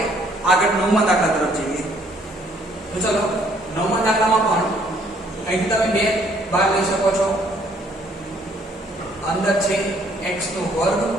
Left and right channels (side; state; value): both; normal; correlation 0.64